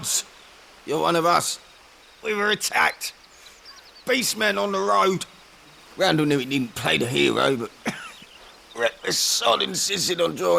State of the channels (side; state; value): both; identical; correlation 1.00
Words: You're one of us. We were attacked. Beastmen on the road. Randall knew he didn't play the hero, but reckless sod insisted on